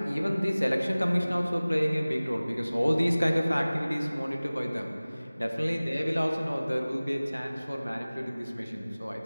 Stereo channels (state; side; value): inverted; both; correlation -0.99